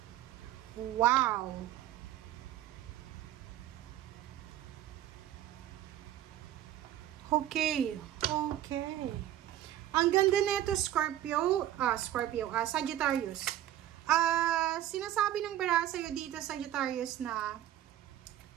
Wow. Okay. Ang ganda nito, Sagittarius. Sinasabi ng bara sa'yo dito, Sagittarius, na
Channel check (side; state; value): left; quieter; 12.6 dB